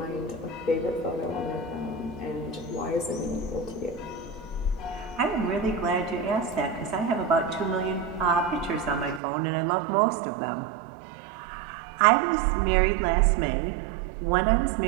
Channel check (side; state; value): left; drops out; at 9.2 s